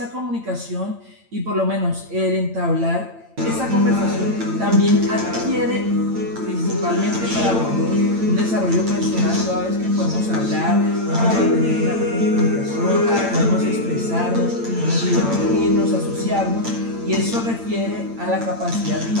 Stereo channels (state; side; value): late; left; 8.8 ms